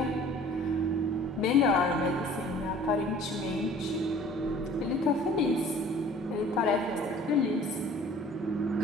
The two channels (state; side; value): normal; both; correlation 0.50